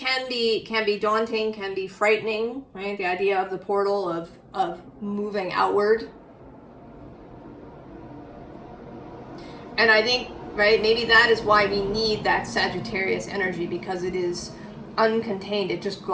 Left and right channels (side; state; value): both; identical; correlation 1.00